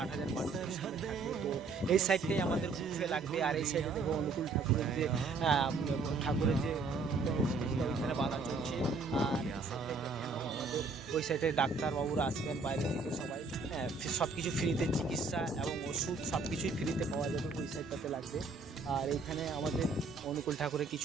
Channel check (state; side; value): quieter; left; 4.0 dB